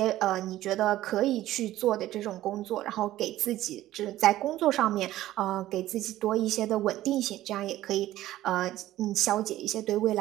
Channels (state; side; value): quieter; left; 14.6 dB